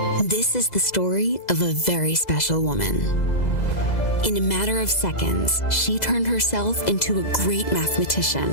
This is the story of a very special woman. In a matter of seconds, she turned herself into a great mathematician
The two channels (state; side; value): late; right; 2.0 ms